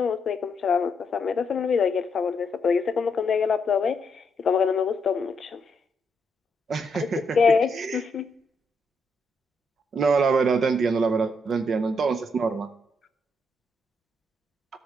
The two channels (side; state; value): both; normal; correlation 0.77